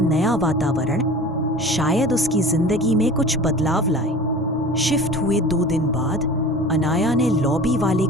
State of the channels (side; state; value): both; normal; correlation 0.39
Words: वातावरण शायद उसकी जिंदगी में कुछ बदलाव लाए। शिफ्ट हुए 2 दिन बाद अनाया ने लॉबी वाले